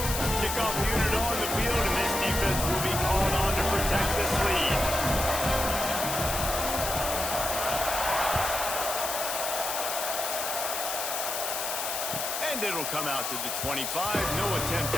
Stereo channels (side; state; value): left; noise; hiss, 3 dB below the sound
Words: Kickoff unit on the field, and this defense will be called on to protect this lead. And it'll come out to the 25. No attempt